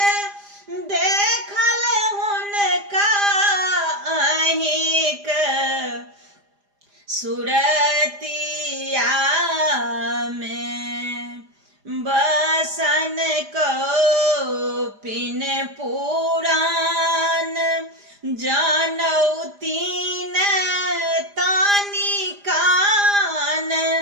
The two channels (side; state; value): left; late; 4.9 ms